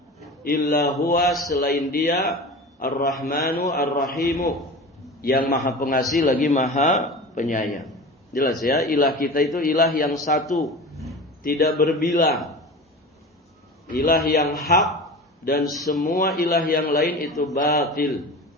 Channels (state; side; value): normal; both; correlation 0.33